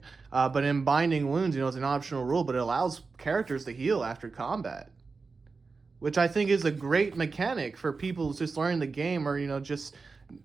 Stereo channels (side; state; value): left; quieter; 4.4 dB